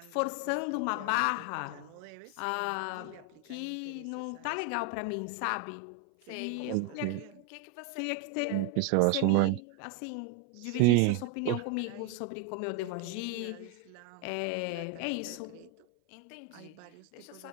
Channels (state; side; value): different; both; correlation 0.01